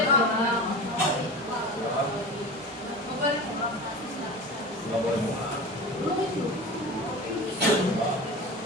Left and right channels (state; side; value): normal; both; correlation 0.31